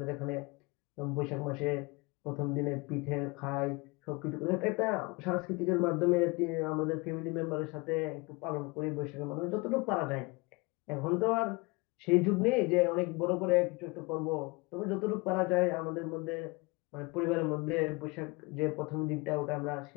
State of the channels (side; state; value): right; quieter; 26.3 dB